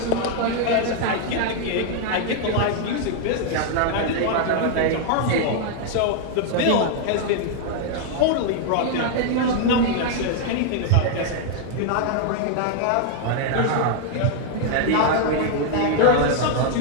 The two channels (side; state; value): both; different; correlation 0.00